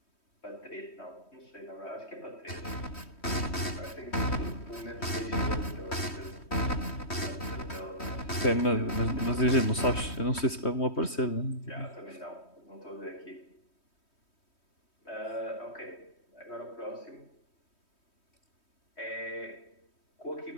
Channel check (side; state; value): right; late; 3.2 ms